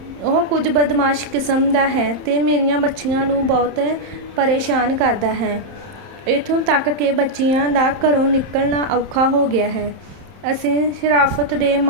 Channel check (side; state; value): left; late; 31 ms